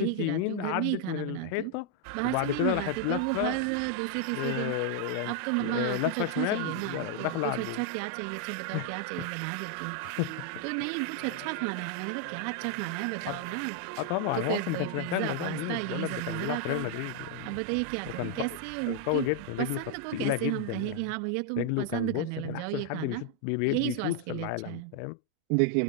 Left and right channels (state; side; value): different; both; correlation 0.00